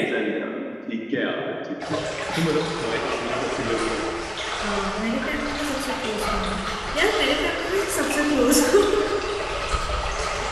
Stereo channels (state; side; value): identical; both; correlation 1.00